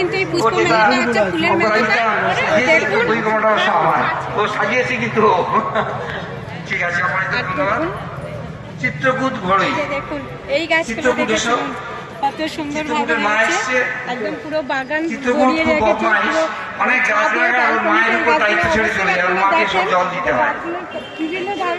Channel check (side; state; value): both; identical; correlation 1.00